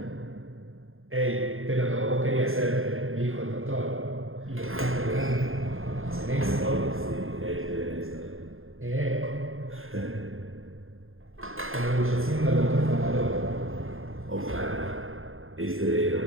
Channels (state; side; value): late; left; 0.60 ms